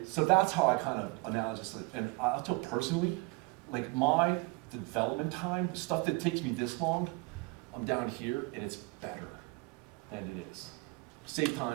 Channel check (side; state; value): left; quieter; 26.7 dB